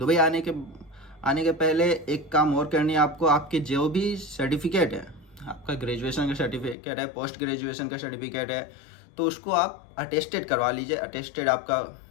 आने के पहले एक काम और करनी है आपको। आपके जो भी सर्टिफिकेट है, आपका ग्रेजुएशन का सर्टिफिकेट है, पोस्ट ग्रेजुएशन का सर्टिफिकेट है, तो उसको आप अटेस्टेड करवा लीजिए। अटेस्टेड आपका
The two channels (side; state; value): right; drops out; at 6.8 s